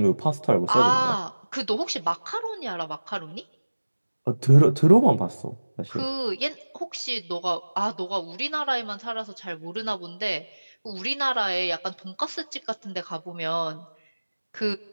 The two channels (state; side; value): inverted; both; correlation -1.00